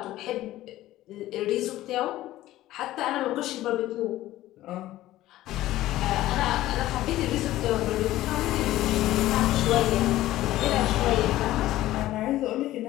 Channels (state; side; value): quieter; right; 15.3 dB